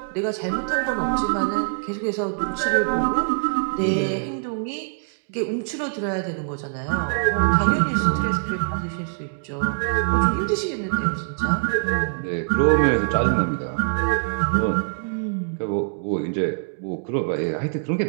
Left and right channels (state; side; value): silent; left; digital silence